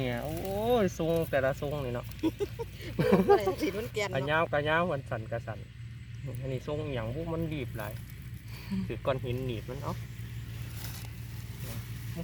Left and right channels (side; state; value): both; identical; correlation 1.00